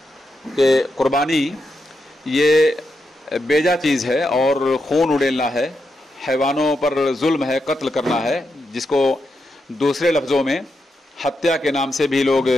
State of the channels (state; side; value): normal; both; correlation 0.85